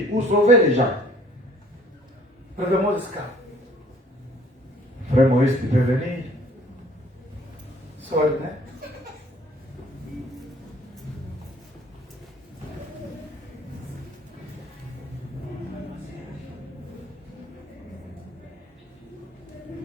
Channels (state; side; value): normal; both; correlation 0.57